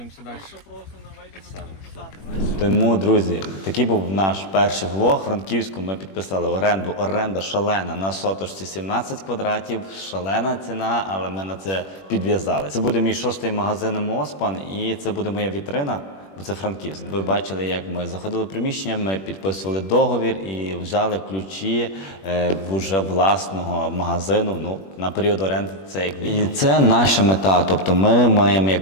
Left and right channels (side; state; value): right; late; 21 ms